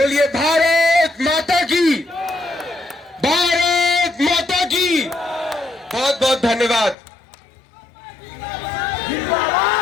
भारत माता की, भारत माता की। बहुत बहुत धन्यवाद।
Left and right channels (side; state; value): right; drops out; at 7.0 s